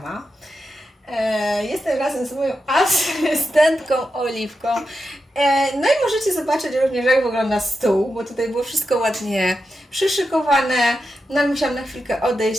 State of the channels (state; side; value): normal; both; correlation 0.88